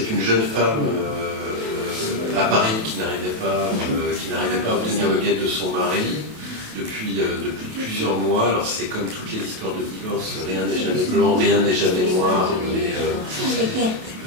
une jeune femme à Paris qui n'arrivait pas à obtenir le guet de son mari depuis plusieurs mois. Alors c'est comme toutes les histoires de divorce, rien n'est jamais blanc, rien n'est jamais noir, mais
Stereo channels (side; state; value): left; late; 28 ms